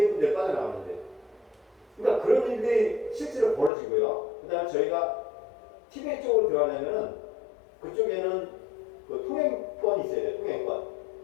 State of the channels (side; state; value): right; drops out; at 3.7 s